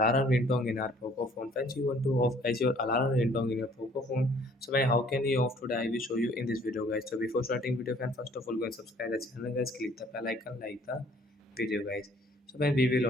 ringtone in our Poco phone. Friends, you want to off guys your alarm ringtone in your Poco phone. So man, how can you off today? I will show you in this video guys. So before starting video friend, first of all go and subscribe the channel guys. Click the bell icon, like the video guys. So when we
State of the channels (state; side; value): normal; both; correlation 0.58